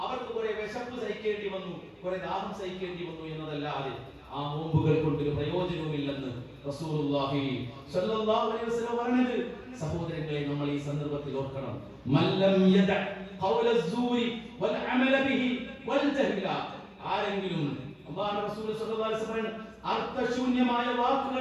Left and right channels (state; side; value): identical; both; correlation 1.00